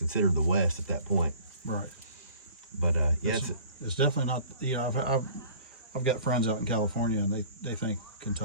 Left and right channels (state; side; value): inverted; both; correlation -0.47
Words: the West at that point. Right. But it's definitely not. I've got friends out in California, and they think